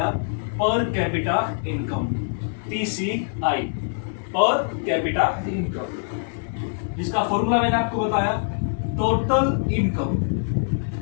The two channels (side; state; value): right; silent; 63 dB below the other